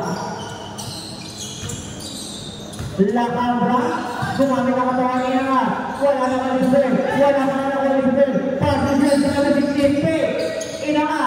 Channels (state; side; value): identical; both; correlation 1.00